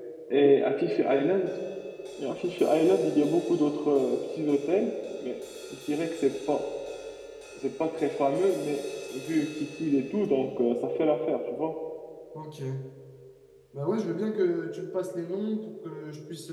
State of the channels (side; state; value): both; identical; correlation 1.00